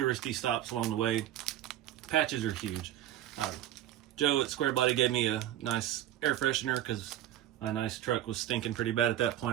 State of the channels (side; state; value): left; quieter; 12.6 dB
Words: stops along the way. Patches are huge. Joe at Squarebody gave me a nice air freshener because my nice truck was stinking pretty bad at that